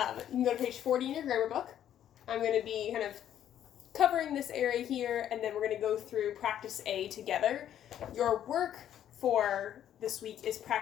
can go to page 40 in your grammar book. I'm going to be kind of covering this area here, and then we're going to go through practice A together. Your work for this week is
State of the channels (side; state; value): right; quieter; 10.6 dB